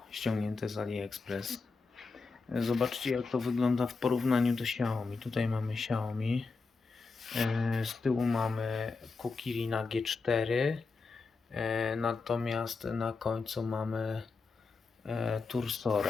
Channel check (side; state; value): right; quieter; 4.3 dB